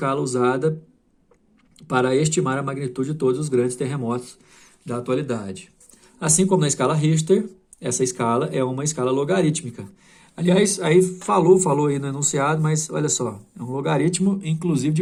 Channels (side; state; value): both; identical; correlation 1.00